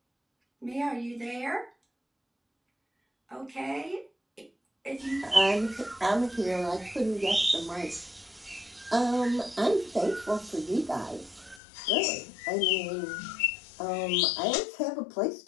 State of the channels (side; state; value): right; drops out; at 11.6 s